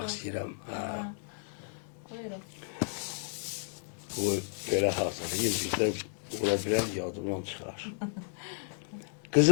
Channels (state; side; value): silent; right; digital silence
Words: istəyirəm. Buyurun. Bu belə hazırlayayım, bizdən ola bilər yadımdan çıxar.